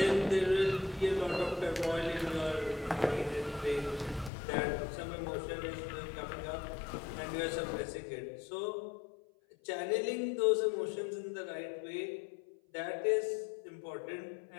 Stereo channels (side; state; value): right; drops out; at 4.3 s